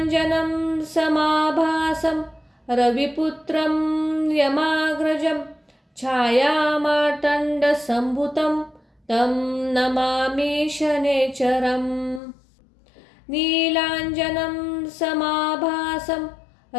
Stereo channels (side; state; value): right; drops out; at 12.2 s